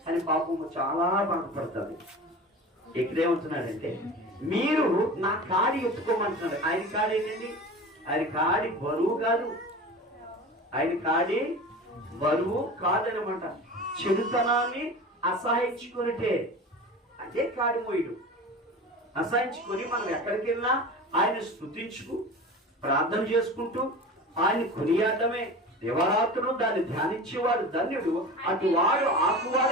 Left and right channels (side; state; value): both; normal; correlation 0.33